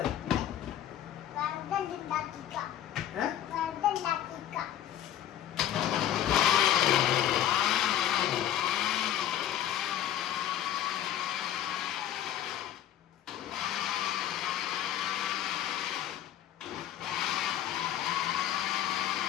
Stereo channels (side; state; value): right; quieter; 11.5 dB